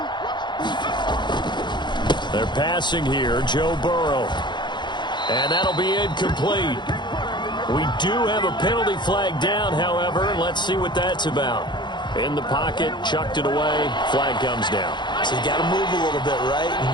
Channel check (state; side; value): late; right; 0.22 ms